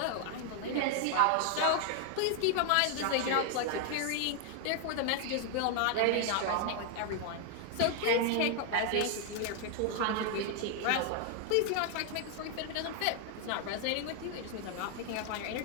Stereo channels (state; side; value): different; both; correlation 0.00